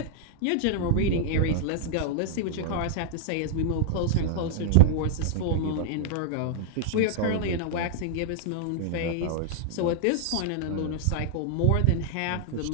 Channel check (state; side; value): different; both; correlation -0.01